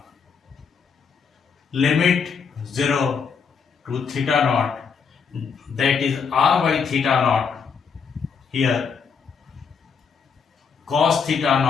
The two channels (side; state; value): right; quieter; 6.0 dB